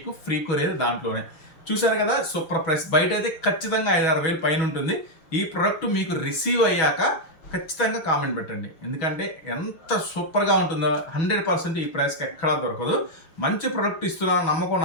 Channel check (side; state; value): right; late; 6.1 ms